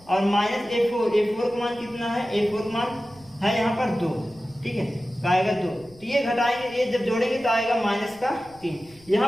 और -a4 का मान कितना है, a4 का मान है यहाँ पर 2। ठीक है, तो आएगा 2। तो ये घटाएंगे, ये जब जोड़ेंगे तो आएगा -3।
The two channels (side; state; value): left; noise; rumble, 26 dB below the sound